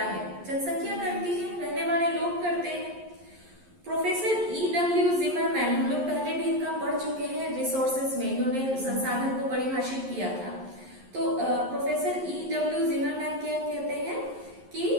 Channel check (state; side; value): late; left; 11 ms